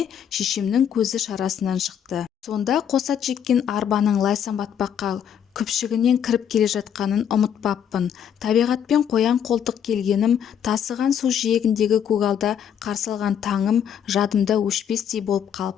шешемнің көзі шарасынан шықты. Сонда қосат жеккен арбаның лайсам батпаққа күпшігінен кіріп келе жатқанын ұмытпаппын. Табиғатпен қоян қолтық келгенім, тасыған су жиегіндегі көгалда қарсы алған таңым жадымда өшпестей болып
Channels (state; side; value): quieter; right; 8.7 dB